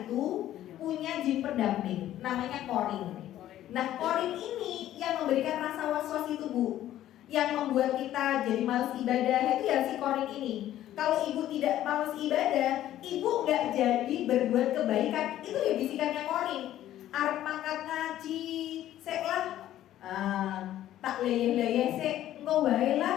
itu punya jin pendamping, namanya korin. Nah korin ini yang memberikan rasa was-was itu Bu, yang membuat kita jadi malas ibadah itu ya si korin ini. Kalau ibu tidak malas ibadah, ibu nggak jadi berbuat kebaikan, itu ya bisikannya korin. Arep mangkat ngaji, sek lah, tak leyeh-leyeh sek, engko wae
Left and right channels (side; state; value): right; quieter; 12.8 dB